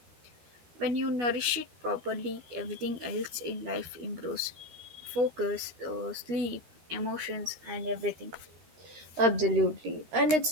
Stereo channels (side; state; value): left; late; 12 ms